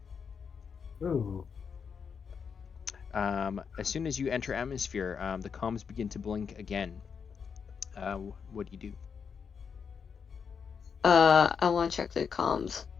Ooh. As soon as you enter atmosphere, the comms begin to blink again. What do you do? I want to check the comms.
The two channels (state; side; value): quieter; right; 6.4 dB